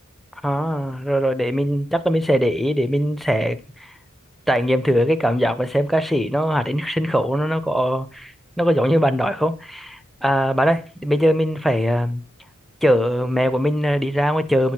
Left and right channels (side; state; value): both; normal; correlation 0.90